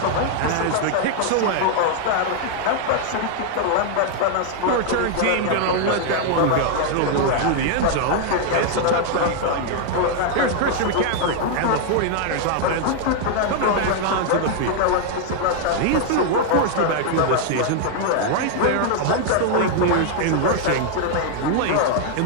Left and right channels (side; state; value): both; different; correlation 0.00